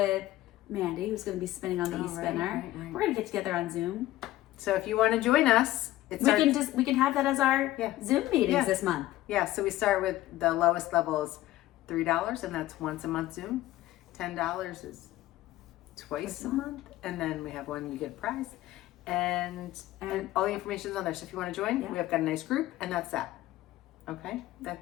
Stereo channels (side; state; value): right; quieter; 15.8 dB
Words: Mandy, who's gonna be spinning on the e-spinner. Right. We're gonna get together on Zoom. So if you want to join us, We can have that as our Zoom meetings this month. Yeah, so we start with the lowest level is $3, and that's once a month Zoom. $10 is twice a month, and then we have one you get a prize, and all the information is on there. So if you want to join, we have got a nice group, and that's that. Okay,